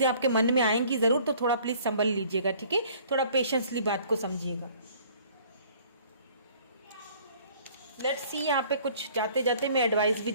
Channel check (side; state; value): both; inverted; correlation -0.55